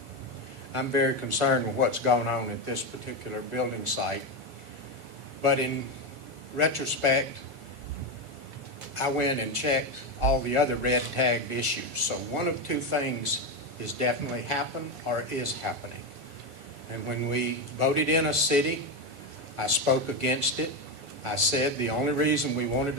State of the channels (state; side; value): late; left; 7.1 ms